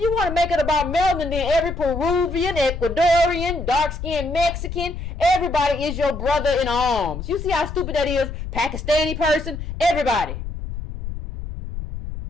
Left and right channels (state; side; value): noise; left; rumble, 7 dB below the sound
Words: want to make it about melanin, then every Peruvian, Ecuadorian, dark-skinned Mexican, everybody is your brother in arms. You see how stupid that is? Pakistani person, everybody.